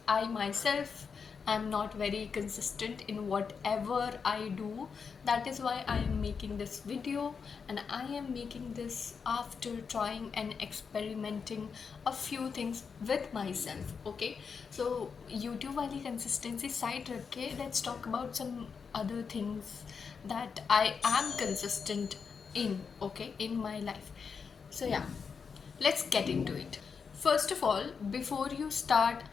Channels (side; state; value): right; quieter; 5.8 dB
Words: I myself am not very consistent in whatever I do. That is why I am making this video, and I am making this after trying and experimenting a few things with myself. Okay, so YouTube wali consistency side रख के let's talk about some other things that I am consistent in, okay, in my life. So yeah, let's get into it. First of all, before you start